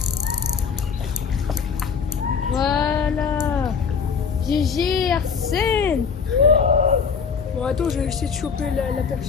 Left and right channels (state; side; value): quieter; right; 6.1 dB